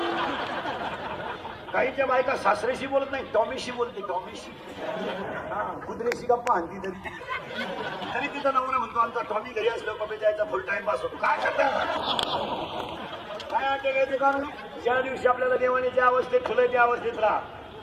काहींच्या बायका सासऱ्याशी बोलत नाही टॉमीशी बोलते. टॉमीशी कुत्र्याशी गप्पा आणती तरी तिचा नवरा म्हणतो आमचा टॉमी घरी असलो बाबा जायचा फुल टाइम पास होतो. काय करतात काय अटॅक कारण ज्या दिवशी आपल्याला देवाने ज्या अवस्थेत ठेवलंय त्या अवस्थेत राहा.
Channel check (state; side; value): identical; both; correlation 1.00